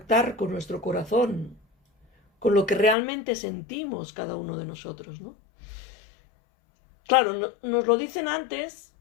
con nuestro corazón, con lo que realmente sentimos cada uno de nosotros, ¿no? Claro, nos lo dicen antes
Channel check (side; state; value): right; drops out; at 3.0 s